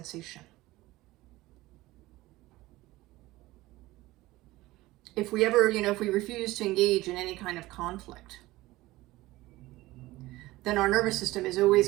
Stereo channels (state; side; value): quieter; left; 18.5 dB